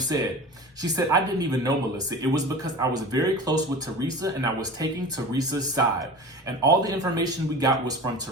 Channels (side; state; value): both; normal; correlation 0.35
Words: She said, I didn't even know Melissa. It was because I was very close with Teresa and I was taking Teresa's side. And all the information we got was from